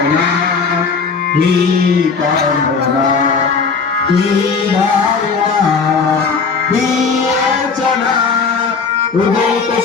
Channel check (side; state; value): right; quieter; 5.1 dB